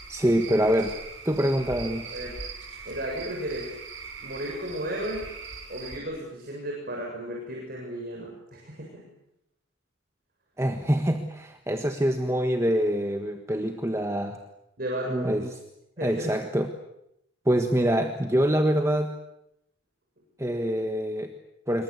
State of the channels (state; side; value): normal; both; correlation 0.77